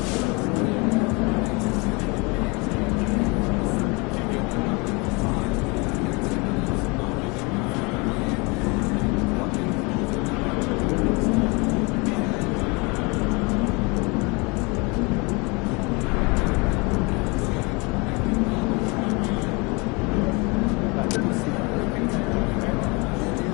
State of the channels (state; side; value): quieter; right; 28.4 dB